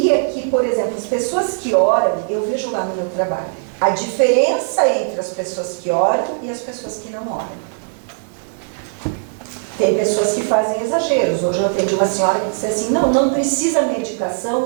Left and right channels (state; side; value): silent; left; 67 dB below the other